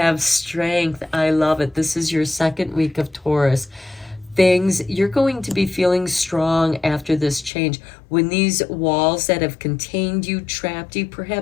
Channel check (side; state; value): right; drops out; at 7.5 s